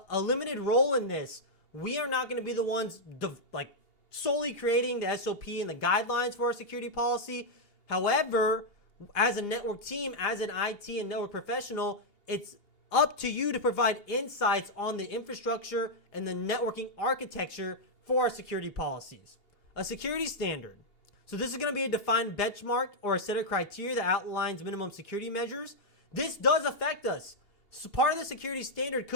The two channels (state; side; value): late; right; 2.8 ms